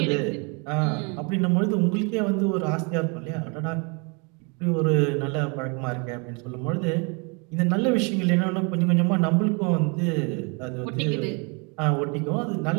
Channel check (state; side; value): quieter; left; 32.9 dB